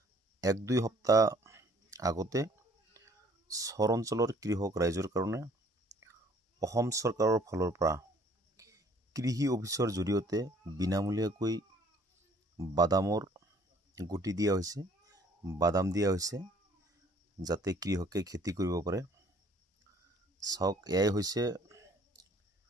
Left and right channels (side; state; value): both; normal; correlation 0.58